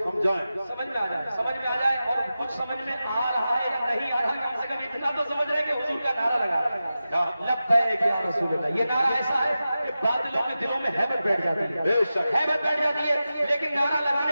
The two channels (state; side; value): inverted; both; correlation -0.93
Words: समझाएं, समझ में आ जाए और कुछ समझ में आ रहा है या नहीं आ रहा, कम से कम इतना तो समझ रहे हैं कि हुजूर का नारा लगा रहा है लब्बैक या रसूल अल्लाह। ये नारा ऐसा है कि बादलों के दिलों में हैबत बैठ जाती है, हैबत बैठ जाती है, लेकिन नारा